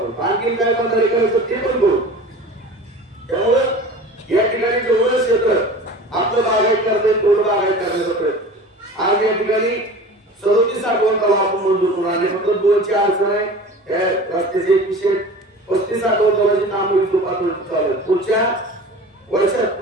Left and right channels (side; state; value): both; normal; correlation 0.38